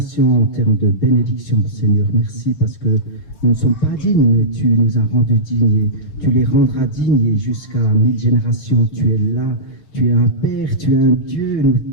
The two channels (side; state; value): right; late; 7.1 ms